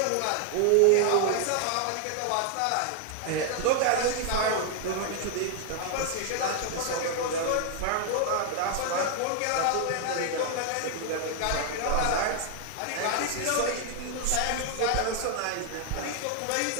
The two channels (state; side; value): different; both; correlation 0.00